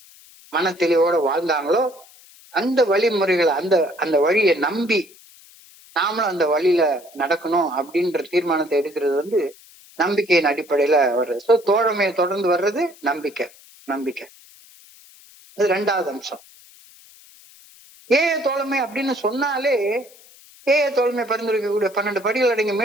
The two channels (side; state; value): left; noise; hiss, 24 dB below the sound